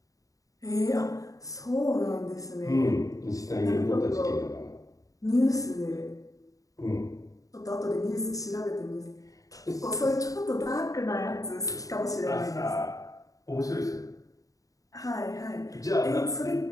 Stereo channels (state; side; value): late; right; 0.17 ms